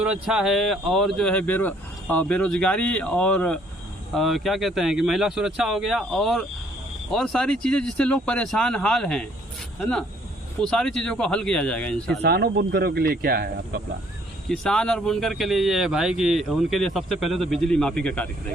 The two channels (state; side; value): normal; both; correlation 0.63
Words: है और जो है बेरोजगारी और क्या कहते हैं कि महिला सुरक्षा हो गया और सारी चीज़ें जिससे लोग परेशान हाल हैं, है ना, वो सारी चीज़ों को हल किया जाएगा इंशाल्लाह। किसानों बुनकरों के लिए क्या है आपका प्लान? किसान और बुनकर के लिए ये है भाई कि उनके लिए सबसे पहले तो बिजली माफ़ी का कार्य